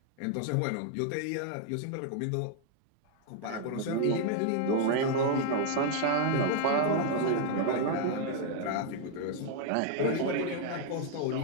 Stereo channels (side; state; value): both; different; correlation 0.00